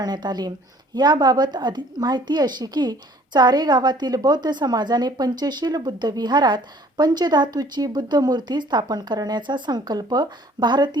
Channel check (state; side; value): normal; both; correlation 0.55